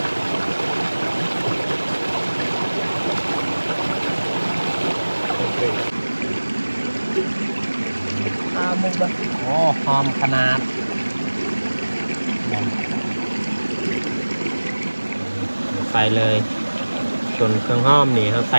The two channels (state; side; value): inverted; both; correlation -1.00